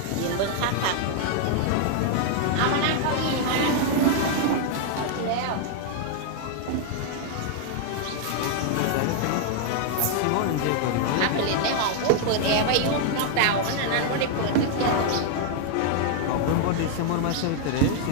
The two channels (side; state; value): both; different; correlation 0.00